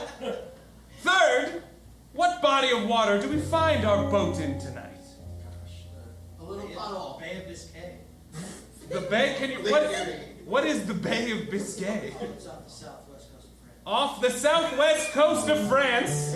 Third, what body of water do we find our boat in tonight? A little puddle. Bay of Biscay. The Bay? Can you... What is the Bay of Biscay? It's off the southwest coast of France. Off the southwest coast of France,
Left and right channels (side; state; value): both; identical; correlation 1.00